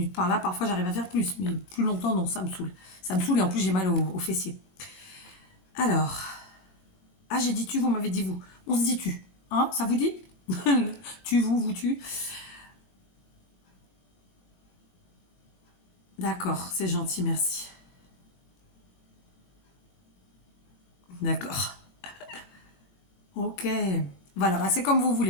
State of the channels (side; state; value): right; late; 22 ms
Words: par-là. Parfois, j'arrive à faire plus, mais plus longtemps, non, ça me saoule. Ça me saoule et en plus, j'ai mal aux fessiers. Alors. Ah, j'ai dit tu, vous m'avez dit vous. On se dit tu. Hein, ça vous dit? Tu, vous, tu. D'accord, c'est gentil, merci. D'accord. Ok. Voilà, bah, c'est comme vous